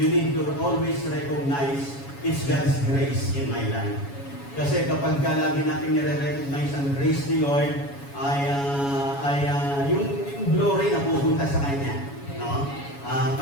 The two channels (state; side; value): late; right; 7.2 ms